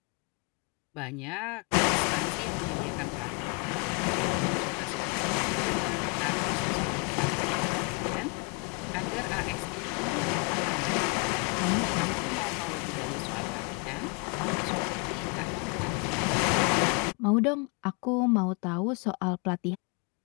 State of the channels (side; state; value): right; quieter; 34.3 dB